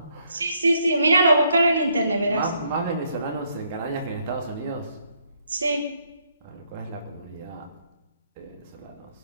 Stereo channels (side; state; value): both; inverted; correlation -0.72